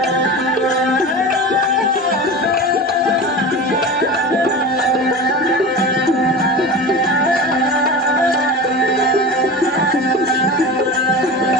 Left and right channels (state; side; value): normal; both; correlation 0.30